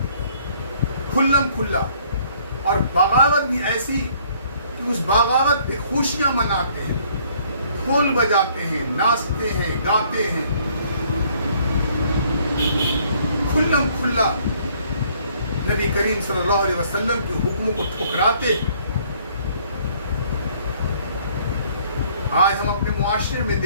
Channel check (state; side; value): inverted; both; correlation -0.61